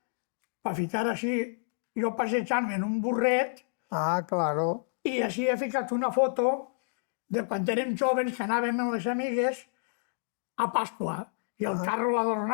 per ficar així, jo passejant-me en un burret, Claro. i així he ficat una foto de quan érem joves que anàvem amb les amigues a Pasqua, i el carro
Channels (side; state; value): right; silent; digital silence